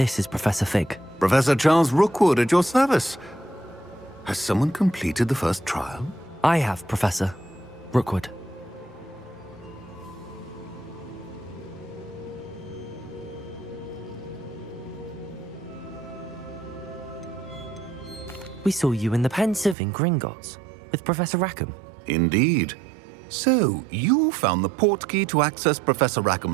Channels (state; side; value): drops out; left; at 19.8 s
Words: is Professor Fig. Professor Charles Rookwood at your service. Has someone completed the first trial? I have, Professor Rookwood. We saw you in the Pensive in Gringotts with Professor Rackham. Indeed. So, you found the portkey to access Professor